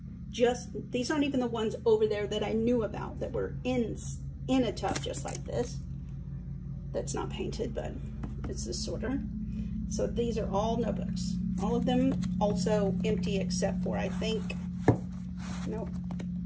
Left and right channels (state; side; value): identical; both; correlation 1.00